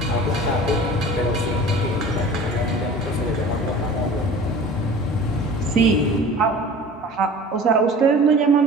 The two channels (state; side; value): normal; both; correlation 0.41